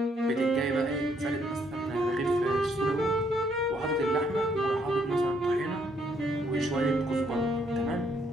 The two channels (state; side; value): normal; both; correlation 0.70